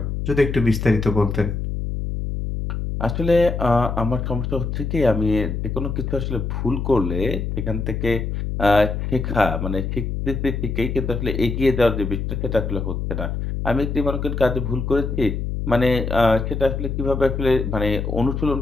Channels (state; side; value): noise; left; hum, 3 dB below the sound